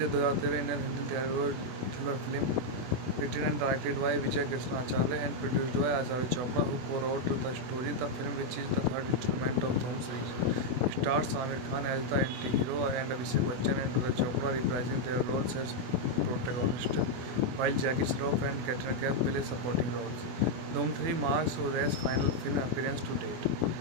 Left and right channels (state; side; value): late; left; 24 ms